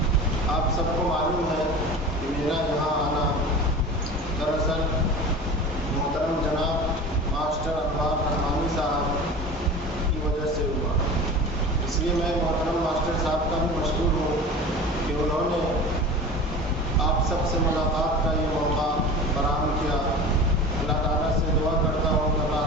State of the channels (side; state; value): both; normal; correlation 0.35